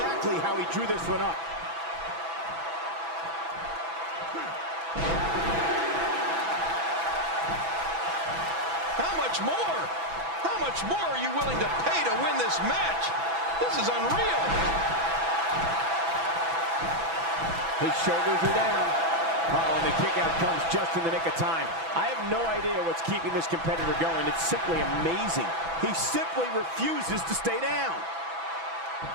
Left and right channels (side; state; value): left; late; 6.0 ms